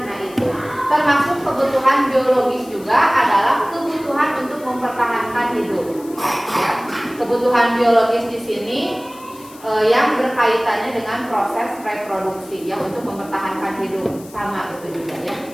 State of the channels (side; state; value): left; noise; hiss, 21 dB below the sound